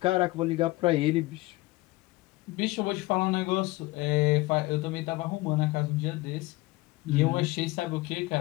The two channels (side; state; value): right; quieter; 20.7 dB